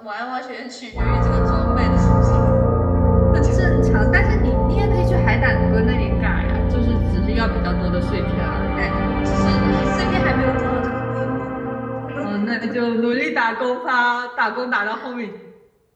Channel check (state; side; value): identical; both; correlation 1.00